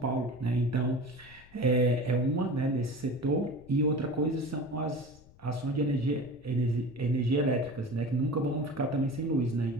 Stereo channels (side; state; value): left; noise; rumble, 24 dB below the sound